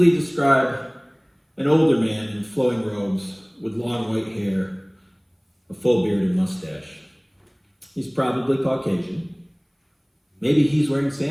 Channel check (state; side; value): identical; both; correlation 1.00